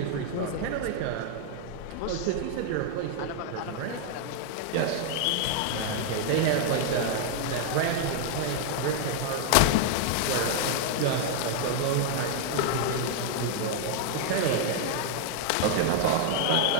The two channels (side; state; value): both; different; correlation 0.00